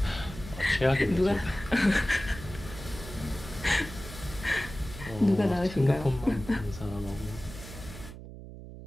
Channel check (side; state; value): right; noise; hum, 13 dB below the sound